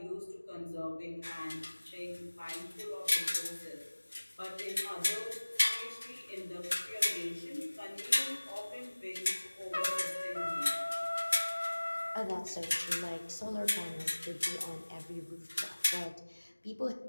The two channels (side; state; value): both; inverted; correlation -1.00